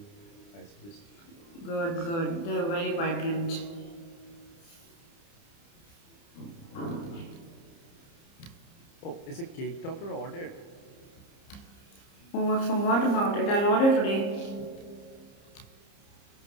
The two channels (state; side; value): late; right; 30 ms